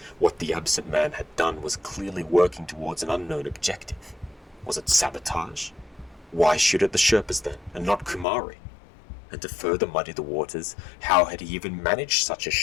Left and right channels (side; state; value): right; drops out; at 8.2 s